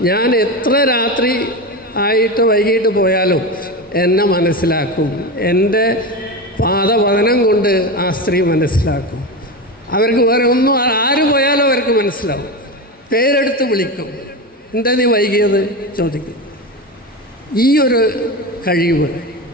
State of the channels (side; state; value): both; normal; correlation 0.20